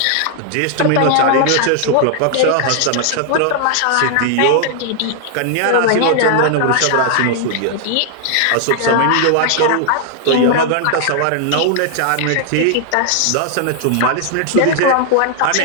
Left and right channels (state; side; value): different; both; correlation 0.00